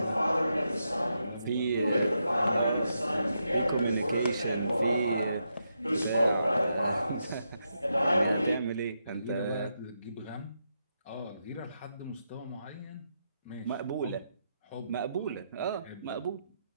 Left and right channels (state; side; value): inverted; both; correlation -0.83